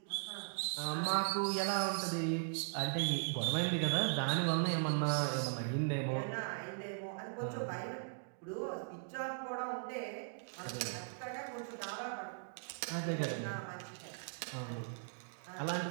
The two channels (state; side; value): silent; left; digital silence